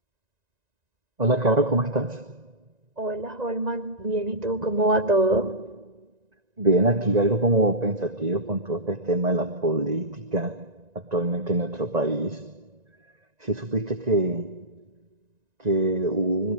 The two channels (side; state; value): left; late; 1.9 ms